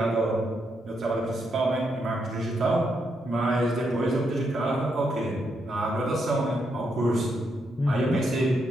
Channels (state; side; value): normal; both; correlation 0.80